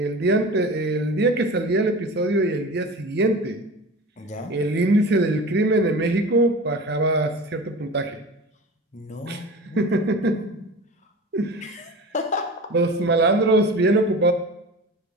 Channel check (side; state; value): both; normal; correlation 0.34